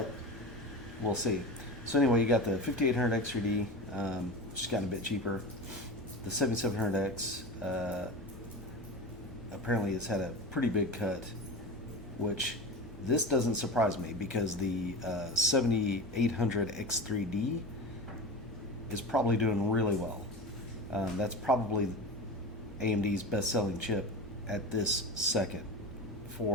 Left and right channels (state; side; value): normal; both; correlation 0.28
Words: we'll see. So anyway, you got the 5800X 3D, just gotten a bit cheaper. The 7700X apparently has had a pretty big cut, which this doesn't surprise me because the 7800X 3D is probably doing really well. That's probably AMD's best-selling chip at this second